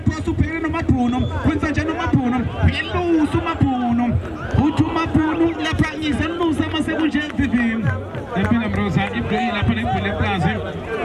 Posu Perino Mapunum. Quintajano Mapunum. Hello, Sumapunum. Utumapunum, La Pranis, and Lusama Sebujan Vivim. The Pinamrosa, if they are putting for the plaza,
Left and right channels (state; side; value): identical; both; correlation 1.00